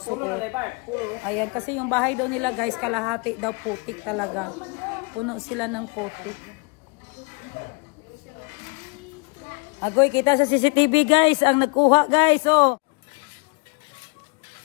Ayan, kasi yung bahay daw nila guys, kalahati daw putik talaga. Puno sila ng putik. Agoy, kita sa CCTV guys, ang nagkuha guys, oh.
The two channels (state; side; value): quieter; right; 32.1 dB